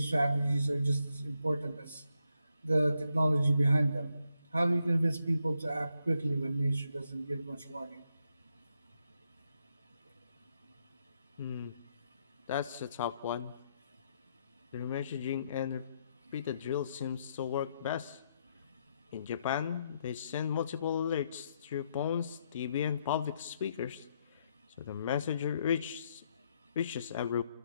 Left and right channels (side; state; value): both; inverted; correlation -0.79